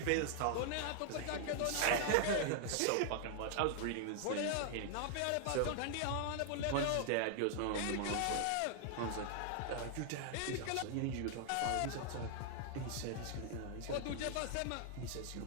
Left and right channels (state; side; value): different; both; correlation 0.00